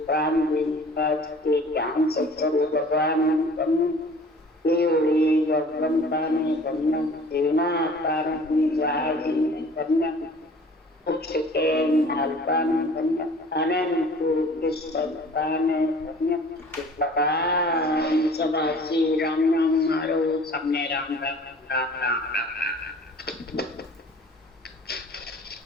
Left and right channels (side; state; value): both; normal; correlation 0.48